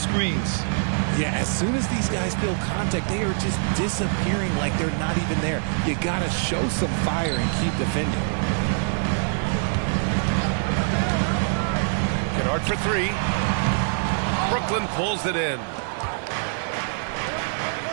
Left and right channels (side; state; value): left; silent; 62 dB below the other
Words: Yeah, as soon as these guys feel contact, they are just disappearing like they're not even there. You gotta show some fire and keep defending. Kennard for 3. Brooklyn pulls it in.